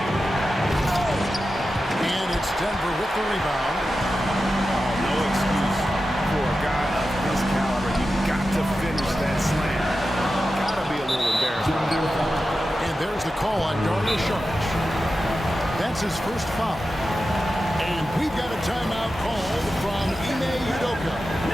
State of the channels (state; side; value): normal; both; correlation 0.92